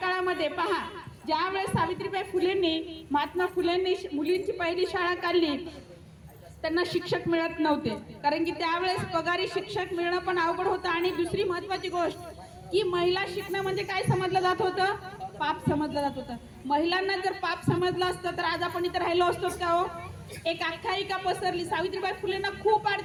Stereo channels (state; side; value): identical; both; correlation 1.00